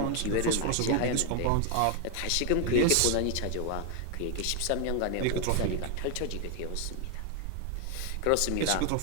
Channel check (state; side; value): different; both; correlation 0.00